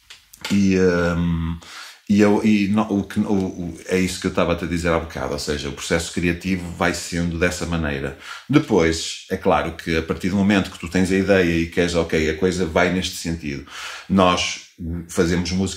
É isso que eu estava a te dizer há bocado, ou seja, o processo criativo vai sendo dessa maneira. Depois, é claro que a partir do momento que tu tens a ideia e queres, ok, a coisa vai neste sentido, nós fazemos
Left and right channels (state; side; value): identical; both; correlation 1.00